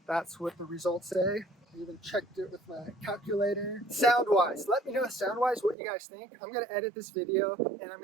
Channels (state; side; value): drops out; left; at 5.8 s